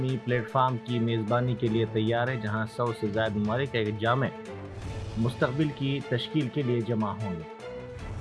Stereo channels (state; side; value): identical; both; correlation 1.00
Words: प्लेटफार्म की मेज़बानी के लिए तैयार है, जहां 100 से ज़्यादा ममालिक एक जामे मुस्तकबिल की तश्कील के लिए जमा होंगे।